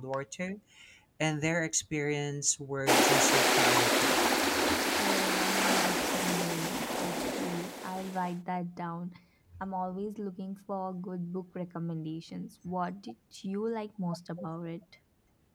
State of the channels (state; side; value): identical; both; correlation 1.00